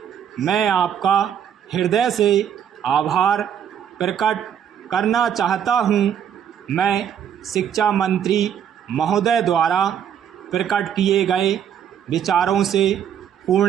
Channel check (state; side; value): quieter; left; 8.9 dB